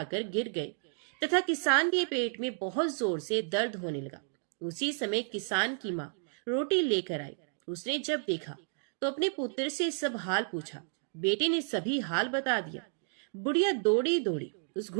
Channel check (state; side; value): silent; left; 56 dB below the other